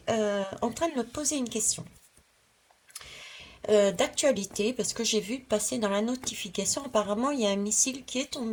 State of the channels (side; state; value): both; identical; correlation 1.00